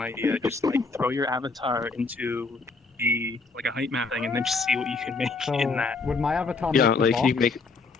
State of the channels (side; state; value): right; quieter; 4.0 dB